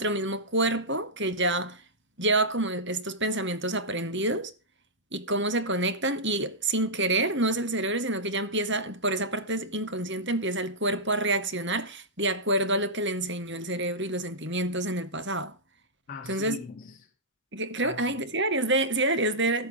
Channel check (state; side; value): normal; both; correlation -0.11